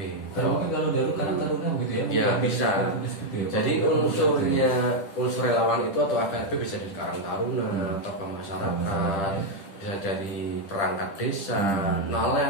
Mungkin kalau Karang Taruna begitu ya? Ya bisa. Jadi unsur relawan itu atau FPRB bisa dari Karang Taruna atau masyarakat, bisa dari perangkat desa,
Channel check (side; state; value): right; late; 10 ms